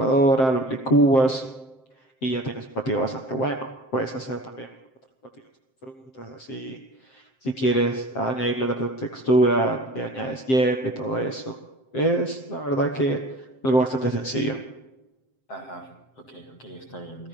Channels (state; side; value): late; right; 7.7 ms